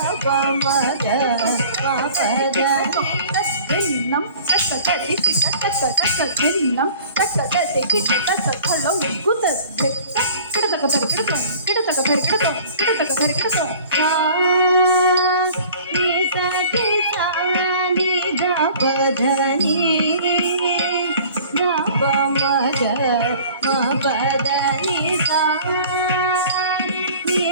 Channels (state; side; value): inverted; both; correlation -0.47